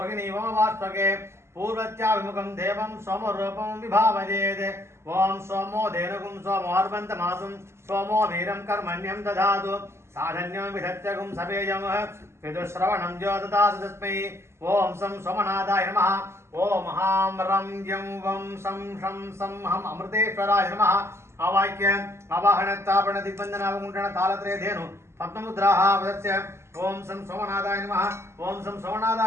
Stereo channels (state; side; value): late; left; 0.13 ms